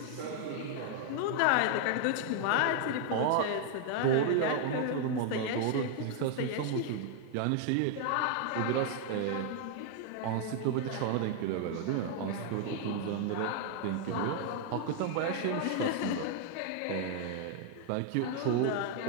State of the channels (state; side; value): different; both; correlation 0.00